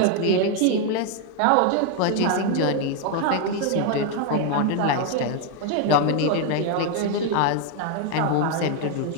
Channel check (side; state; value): both; different; correlation 0.01